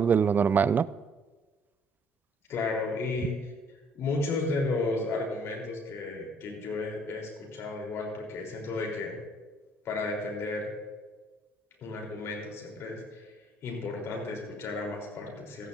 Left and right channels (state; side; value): normal; both; correlation 0.63